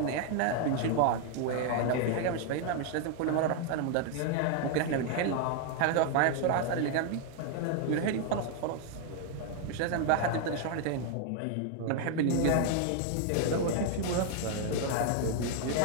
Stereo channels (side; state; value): both; different; correlation 0.00